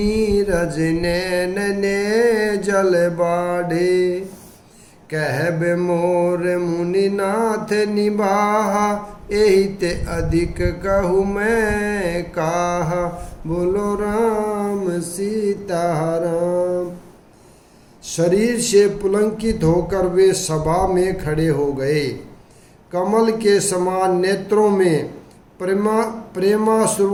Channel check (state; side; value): identical; both; correlation 1.00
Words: नैन ने जल बाढ़े, कहबे मोर मुनिनाथ निभाहा, एहि ते अधिक कहूँ मैं काहा, बोलो राम सीताराम। शरीर से पुलंकित होकर वे सभा में खड़े हो गए। कमल के समान नेत्रों में